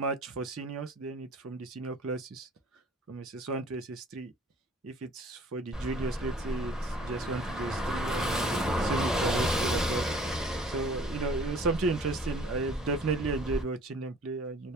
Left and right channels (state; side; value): normal; both; correlation 0.52